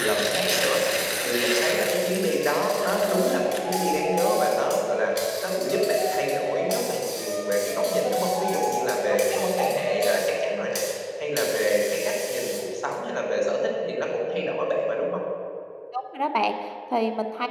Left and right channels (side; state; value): both; identical; correlation 1.00